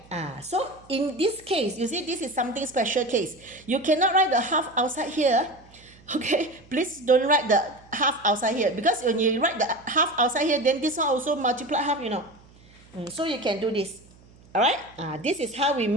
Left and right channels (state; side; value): noise; right; hum, 26 dB below the sound